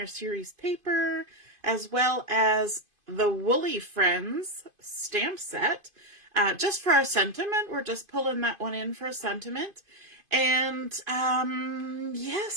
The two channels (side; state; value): left; late; 2.5 ms